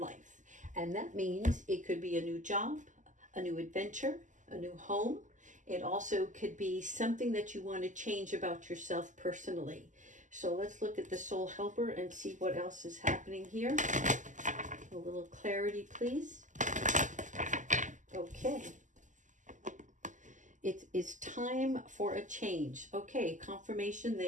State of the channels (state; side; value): late; left; 0.37 ms